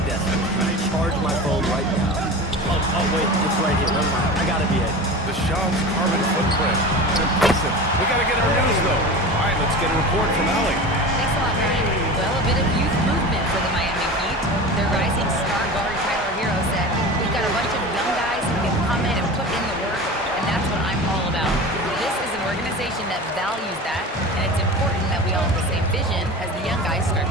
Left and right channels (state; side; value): normal; both; correlation 0.32